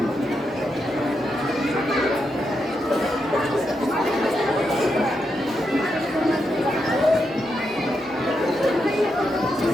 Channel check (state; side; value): normal; both; correlation 0.83